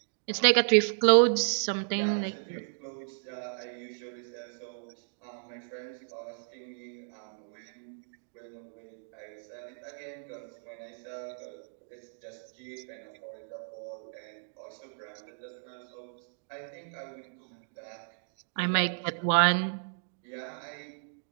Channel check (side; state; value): left; silent; digital silence